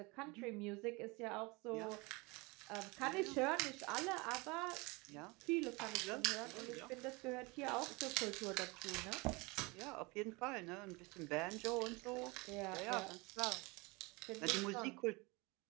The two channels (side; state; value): left; quieter; 25.9 dB